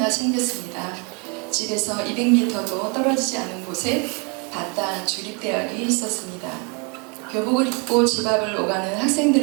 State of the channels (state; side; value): quieter; left; 33.5 dB